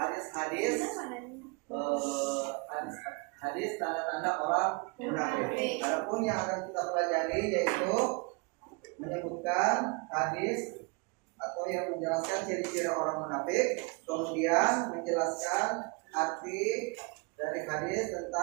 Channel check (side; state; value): left; quieter; 30.7 dB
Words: tanda-tanda orang munafik. Adapun yang akan kita pelajari yaitu menyebutkan hadis atau yang menjelaskan ciri-ciri orang munafik, kemudian menjelaskan arti dari hadis